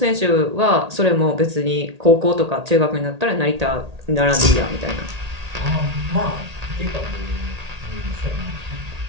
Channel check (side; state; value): left; late; 1.8 ms